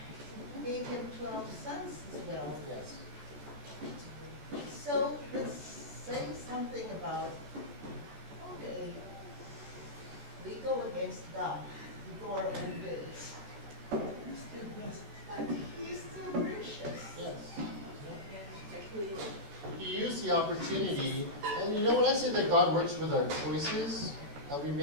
Gave him 12 sons as well. Yes. So let's say something about, okay, we go against God, we go our own ways. He's still blessed. But he's still gracious. Yes. Exactly. He used the opportunity, and you know when I say that God works with our choices that we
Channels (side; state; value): left; late; 14 ms